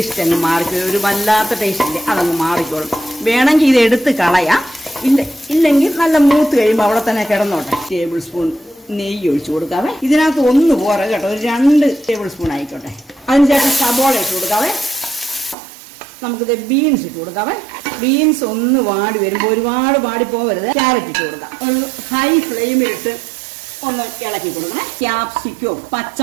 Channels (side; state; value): left; drops out; at 15.6 s